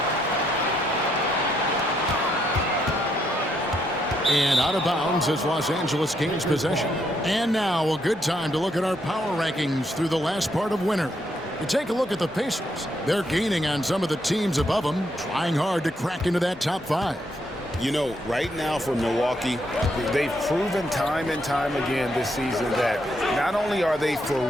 And out of bounds as Los Angeles gains possession. And now a good time to look at our power rankings through the last part of winter. You take a look at the Pacers. They're gaining on some of the teams above them, trying hard to crack into that top 5. You know, right now for Milwaukee, they've proven time and time again this season that not only are they for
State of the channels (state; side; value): normal; both; correlation 0.76